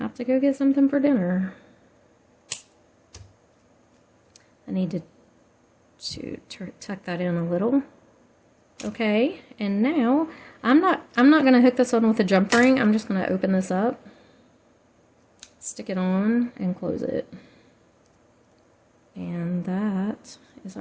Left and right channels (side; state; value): both; identical; correlation 1.00